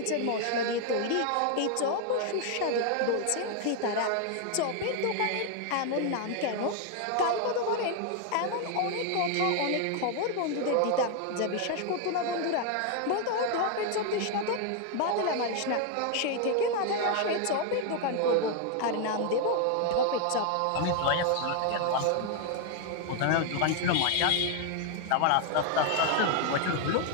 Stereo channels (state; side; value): different; both; correlation 0.01